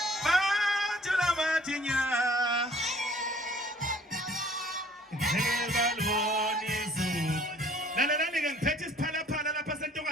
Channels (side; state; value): both; normal; correlation 0.56